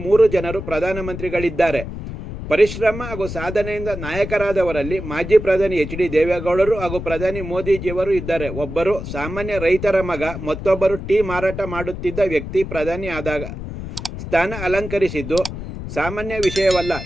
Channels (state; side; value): noise; left; rumble, 8 dB below the sound